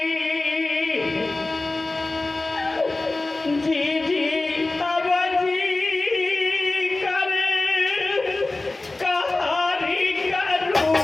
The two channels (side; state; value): right; quieter; 3.1 dB